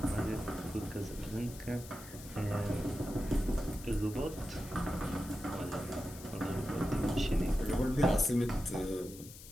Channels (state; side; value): noise; left; hiss, 16 dB below the sound